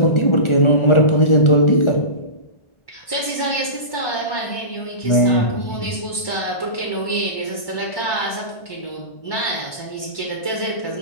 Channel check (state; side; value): late; right; 1.1 ms